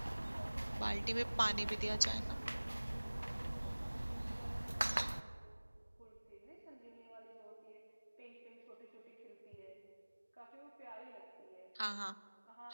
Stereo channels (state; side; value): inverted; both; correlation -1.00